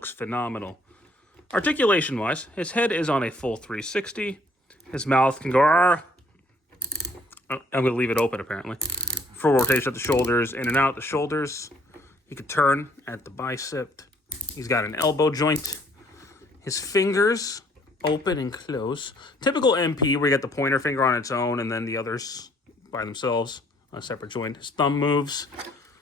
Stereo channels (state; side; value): normal; both; correlation 0.63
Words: phenomenal. Articulation-wise, his head is on a full 360. His mouth can go... I'm going to leave it open, apparently. Full rotation at the shoulders, in and out the shoulders. He can turn at the bicep. He's got an elbow joint. His fingers open and close. Typical MP, where you get the pointer finger on its own and then the others by themselves on a separate joint. His thumb moves.